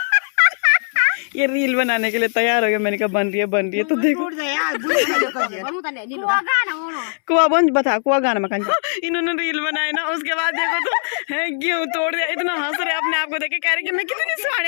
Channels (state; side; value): silent; right; 66 dB below the other